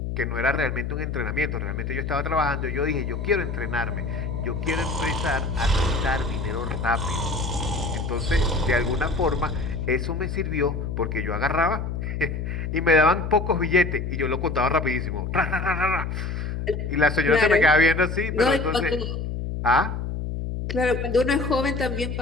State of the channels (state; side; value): noise; left; hum, 4 dB below the sound